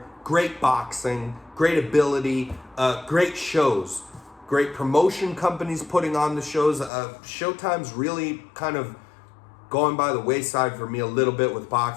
great boxing, great ability, great shows. Great promotion companies putting on the shows. Showtime's really kind of going by the wayside for me a little bit with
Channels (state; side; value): drops out; right; at 6.9 s